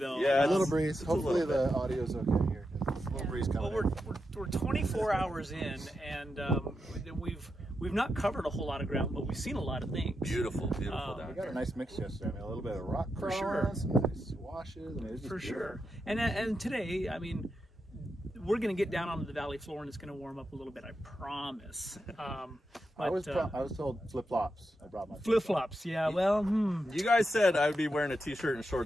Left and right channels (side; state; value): both; normal; correlation 0.86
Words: Yeah, a little breeze. Hopefully the audio's okay here. A little breeze coming. Well, we're 24 hours in, and we've not covered a whole lot of ground, but we've seen a lot of things. Beautiful down We got a nice mix yesterday. I mean, a little bit of rock crawl, some nice washes. I mean, it's just for sure. And today, I mean, we're going to get down onto the valley floor, and it's going to warm up a little bit. I promise. I was told flip flops. I brought my flip flops. Yeah. Well, You guys said I would be wearing a t-shirt and